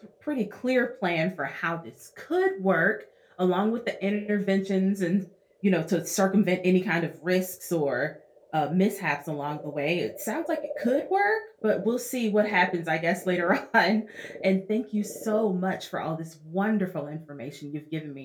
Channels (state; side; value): identical; both; correlation 1.00